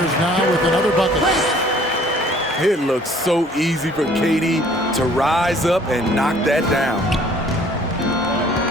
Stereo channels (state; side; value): normal; both; correlation 0.56